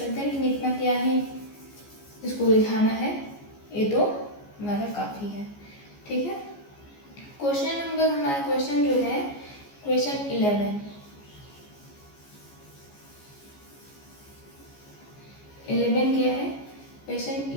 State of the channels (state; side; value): late; right; 14 ms